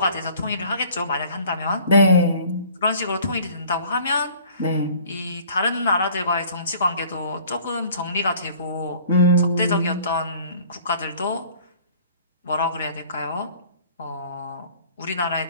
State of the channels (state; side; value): inverted; both; correlation -0.51